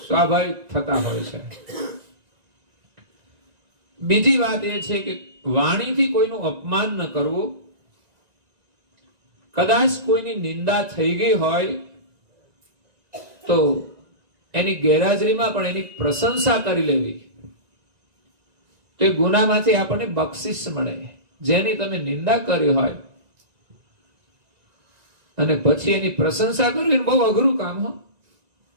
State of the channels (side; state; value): left; late; 1.9 ms